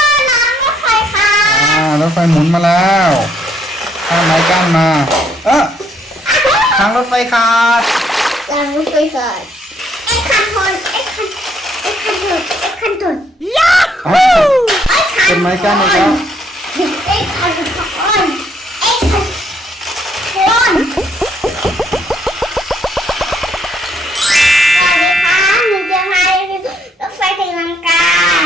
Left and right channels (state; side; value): normal; both; correlation 0.69